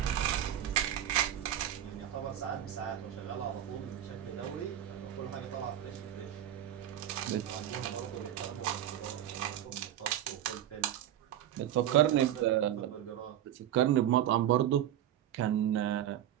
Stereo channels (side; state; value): left; quieter; 11.6 dB